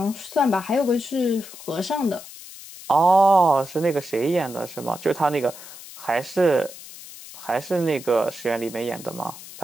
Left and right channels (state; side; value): noise; left; hiss, 15 dB below the sound